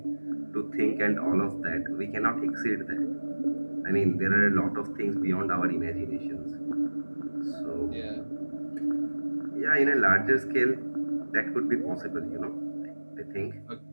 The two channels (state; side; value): inverted; both; correlation -1.00